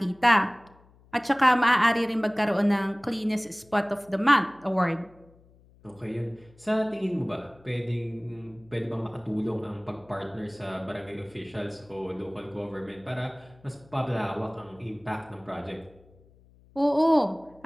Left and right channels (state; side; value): noise; left; hum, 28 dB below the sound